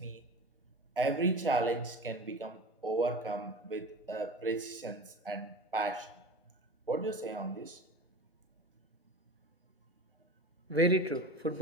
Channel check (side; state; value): both; normal; correlation 0.33